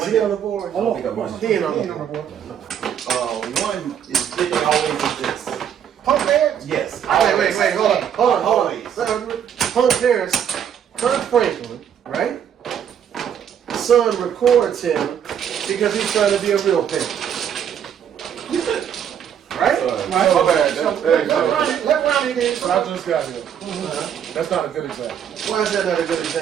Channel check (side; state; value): left; quieter; 8.8 dB